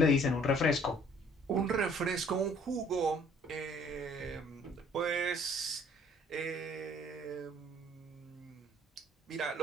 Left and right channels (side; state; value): both; normal; correlation 0.57